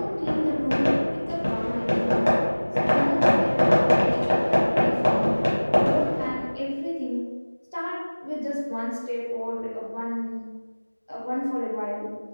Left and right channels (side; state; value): both; inverted; correlation -1.00